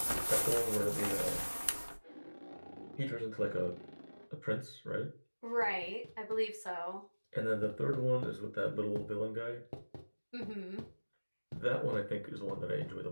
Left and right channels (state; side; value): inverted; both; correlation -1.00